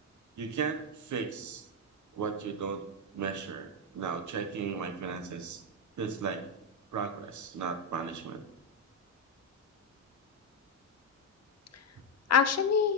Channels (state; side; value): normal; both; correlation 0.03